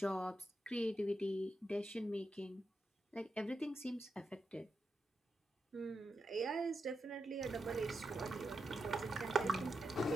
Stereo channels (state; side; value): normal; both; correlation 0.87